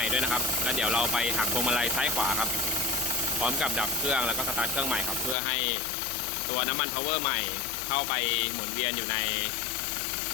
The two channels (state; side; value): drops out; right; at 5.4 s